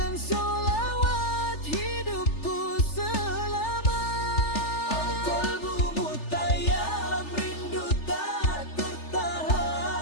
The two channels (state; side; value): late; right; 3.4 ms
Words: sholawat hidupku selamat. Al-qalbu mutayyam, rindu tak